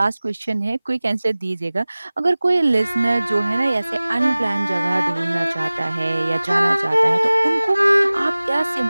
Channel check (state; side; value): inverted; both; correlation -0.99